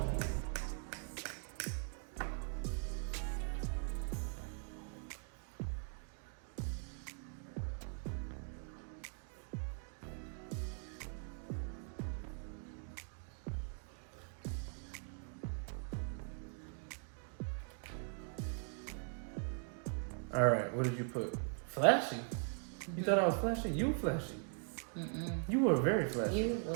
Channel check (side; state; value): left; silent; 50 dB below the other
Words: All right, what did you put? Flashy. You thought I was flashy? You flashy. Mm-mm. You were very flashy. You